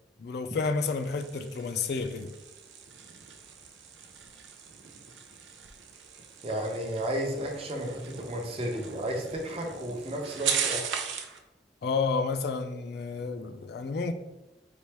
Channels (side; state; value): both; normal; correlation 0.31